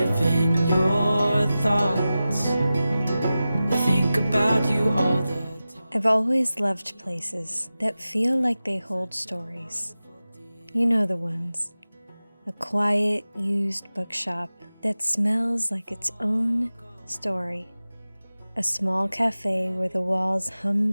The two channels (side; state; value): both; inverted; correlation -0.95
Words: in your thoughts. I think about you all the time. I've always loved places that feel like they hold stories. You know the ones. A quiet, used bookshop that smells like its own story. A small cafe where the walls hum